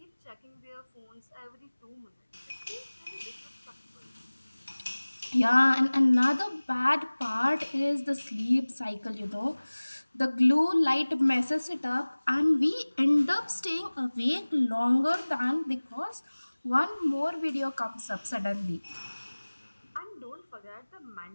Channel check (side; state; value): both; inverted; correlation -1.00